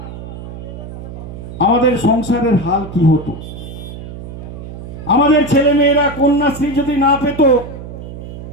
আমাদের সংসারের হাল কি হতো? আমাদের ছেলে মেয়েরা কন্যাশ্রী যদি না পেত,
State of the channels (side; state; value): right; noise; hum, 11 dB below the sound